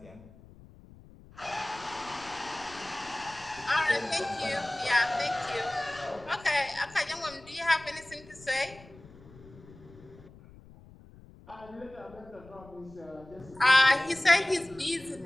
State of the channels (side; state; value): left; noise; rumble, 21 dB below the sound